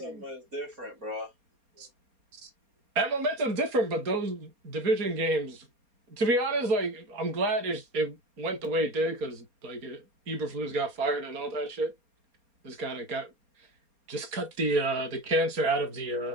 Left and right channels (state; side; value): late; left; 4.3 ms